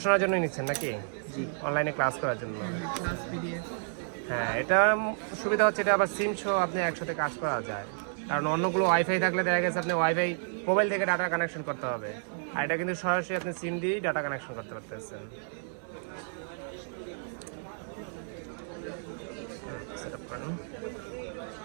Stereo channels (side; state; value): left; silent; 57 dB below the other